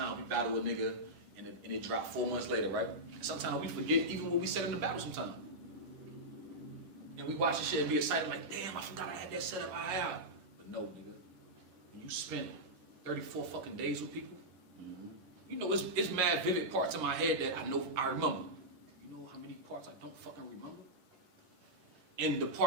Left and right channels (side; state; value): left; late; 10 ms